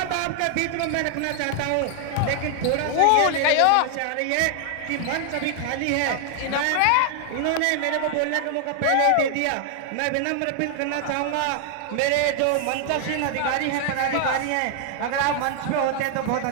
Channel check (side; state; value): both; different; correlation 0.00